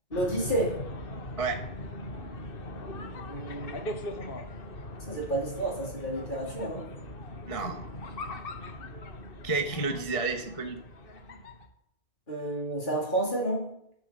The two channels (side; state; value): right; late; 1.6 ms